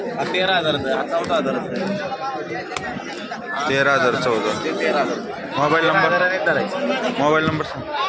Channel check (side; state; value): both; identical; correlation 1.00